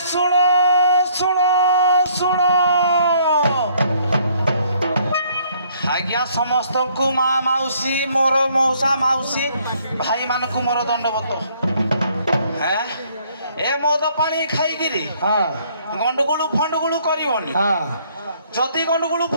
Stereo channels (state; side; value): inverted; both; correlation -0.63